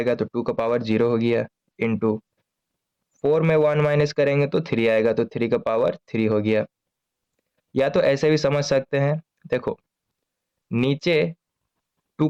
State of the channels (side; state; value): both; identical; correlation 1.00